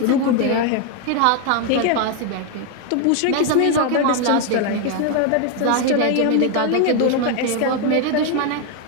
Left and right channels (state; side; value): different; both; correlation 0.01